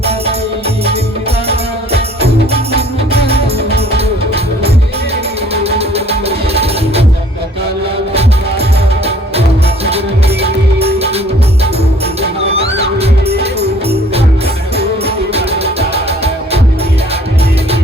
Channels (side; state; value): both; normal; correlation 0.55